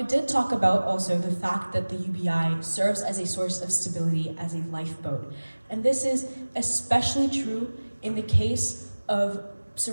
did talk about also the fact that the UBI serves as a source of stability, as a lifeboat. And this is especially true in the case of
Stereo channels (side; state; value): both; inverted; correlation -1.00